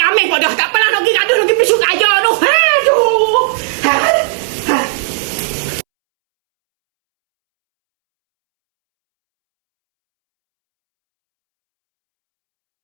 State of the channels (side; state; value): left; silent; 72 dB below the other